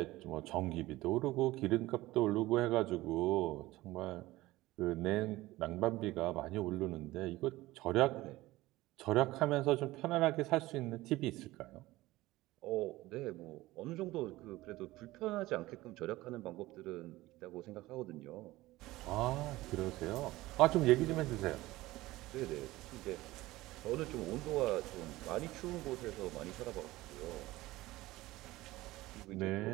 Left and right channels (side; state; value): left; quieter; 18.2 dB